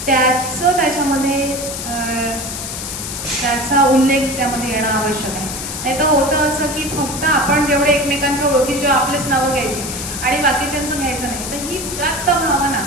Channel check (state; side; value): noise; left; hiss, 6 dB below the sound